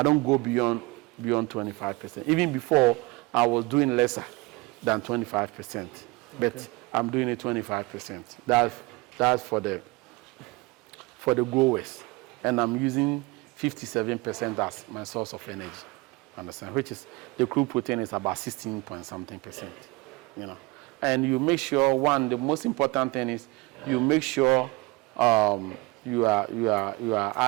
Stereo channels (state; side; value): quieter; left; 24.5 dB